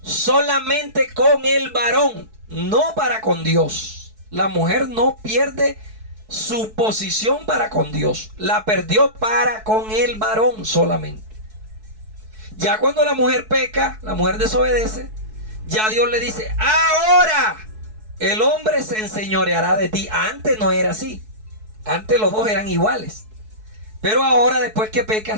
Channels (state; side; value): late; left; 4.6 ms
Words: con el varón, no para con Dios. La mujer no pierde su posición para con Dios, la perdió para con el varón solamente. Ya cuando la mujer peca, la mujer desobedece, ya Dios le dice, ahora el hombre se enseñoreará de ti. Antes no era así. Antes los dos eran iguales. Pero ahora, después que